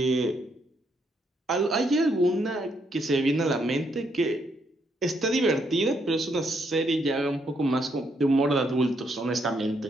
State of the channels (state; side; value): normal; both; correlation 0.75